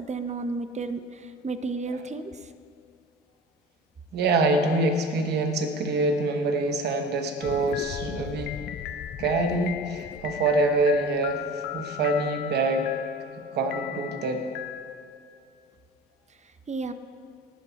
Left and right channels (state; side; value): normal; both; correlation 0.37